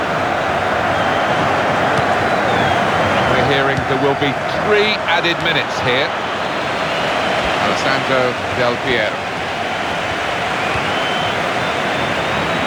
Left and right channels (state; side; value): identical; both; correlation 1.00